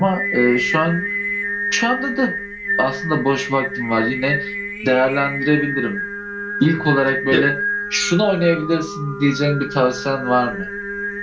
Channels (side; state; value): both; identical; correlation 1.00